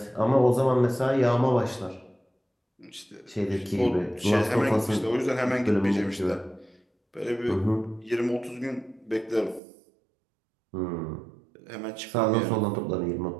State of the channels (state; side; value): drops out; left; at 9.6 s